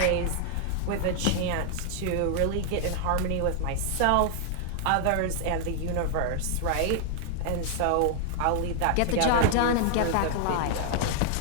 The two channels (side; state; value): both; different; correlation 0.00